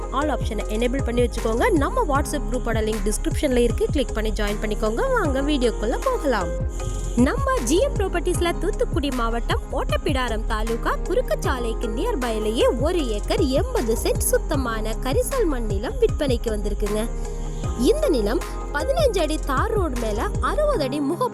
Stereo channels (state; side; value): identical; both; correlation 1.00